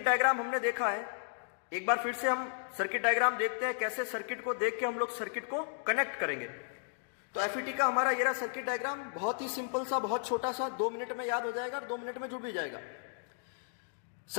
डायग्राम हमने देखा है, एक बार फिर से हम सर्किट डायग्राम देखते हैं, कैसे सर्किट को देख के हम लोग सर्किट को कनेक्ट करेंगे। तो एफईटी का हमारा ये रहा सर्किट डायग्राम, बहुत ही सिंपल सा, बहुत छोटा सा, 2 मिनट में याद हो जाएगा और 2 मिनट में जुड़ भी जाएगा।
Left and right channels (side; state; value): right; silent; digital silence